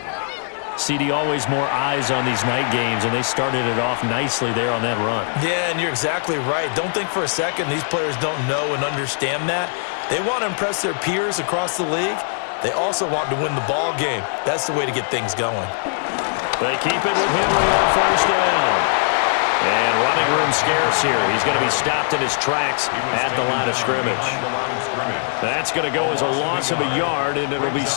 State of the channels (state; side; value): silent; right; digital silence